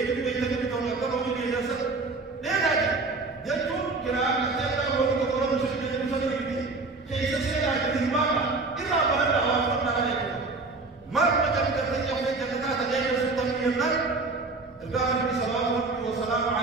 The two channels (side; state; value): left; quieter; 3.7 dB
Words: اللي بيتكلم تقول كم هو اللي يجلس ليه ده جتوا كلام كتير هو اللي تقول مش اللي كيف سيدا كتيماما إذا بلد وافرنا عليكم ما مجال كتير يوم جنات جاي سلطان النار القائم صلى الله وسلام